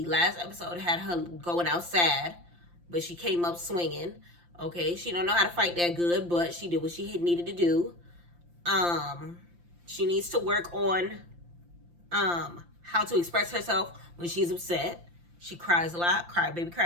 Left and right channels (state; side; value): late; left; 5.8 ms